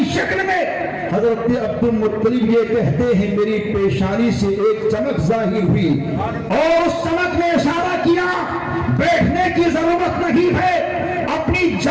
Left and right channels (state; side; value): identical; both; correlation 1.00